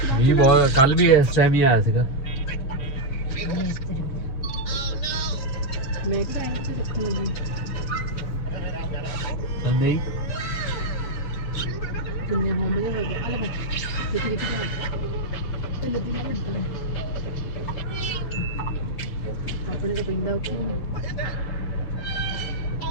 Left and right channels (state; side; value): late; right; 7.6 ms